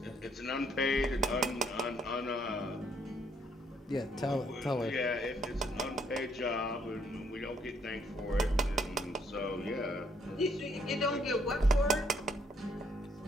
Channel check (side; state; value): both; normal; correlation 0.69